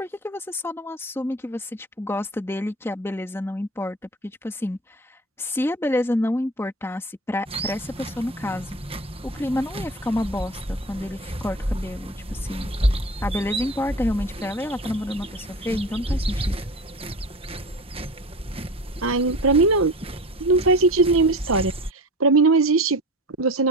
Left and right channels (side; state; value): both; normal; correlation 0.34